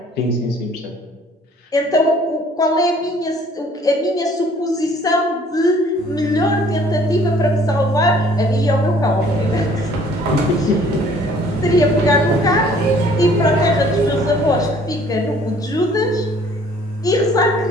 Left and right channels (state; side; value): normal; both; correlation 0.57